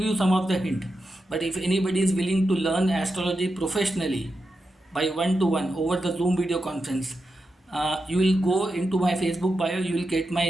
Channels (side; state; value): both; normal; correlation 0.88